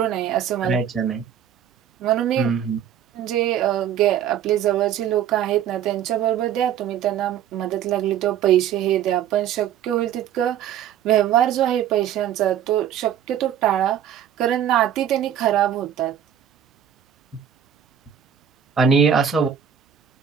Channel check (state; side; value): quieter; left; 9.5 dB